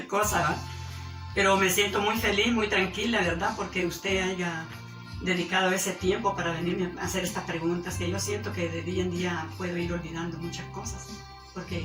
cosa, ¿verdad? Pero me siento muy feliz, muy tranquila, ¿verdad? Porque usted haya dedicado ese tiempo para venirme a hacer estas preguntas, que yo siento que de día en día puedo ir olvidando muchas cosas,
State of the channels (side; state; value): both; identical; correlation 1.00